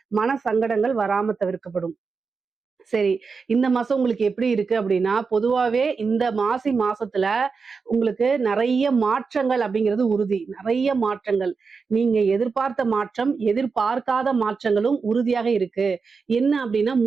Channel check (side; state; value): left; quieter; 5.0 dB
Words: மன சங்கடங்கள் வராம தவிர்க்கப்படும். சரி, இந்த மாசம் உங்களுக்கு எப்படி இருக்கு அப்படின்னா, பொதுவாவே இந்த மாசி மாசத்துல உங்களுக்கு நிறைய மாற்றங்கள் அப்படிங்கிறது உறுதி. நிறைய மாற்றங்கள், நீங்க எதிர்பார்த்த மாற்றம், எதிர்பார்க்காத மாற்றங்களும் உறுதியாக இருக்கு. என்ன அப்படின்னா